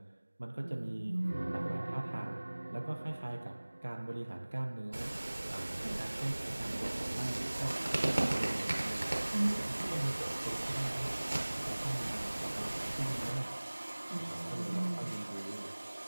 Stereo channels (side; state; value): both; inverted; correlation -1.00